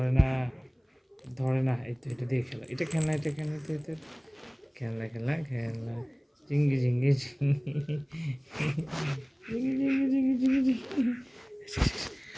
না, ধরে না। এই তো এটা দিয়ে খেলা, এটা খেলনা, এটা খেলনা, এটা খেলনা খেলনা খেলনা। ঝিঙ্গি ঝিঙ্গি ঝিঙ্গি ঝিঙ্গি ঝিঙ্গি ঝিঙ্গি ঝিঙ্গি ঝিঙ্গি।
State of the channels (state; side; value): identical; both; correlation 1.00